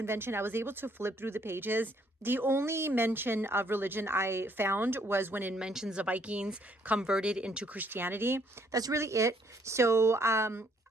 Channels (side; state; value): both; normal; correlation 0.66